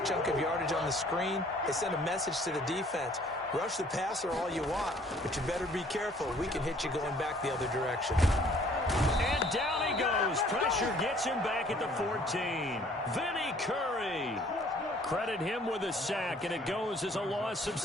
of yardage on the screen, they sent a message to the defense. Rush the passer all you want, but you better be careful. We can hit you going back the other direction. And down he goes. Pressure gets him back at the 14. Vinny Curry. Credit him with a sack, and it goes as a loss of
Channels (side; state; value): both; normal; correlation 0.58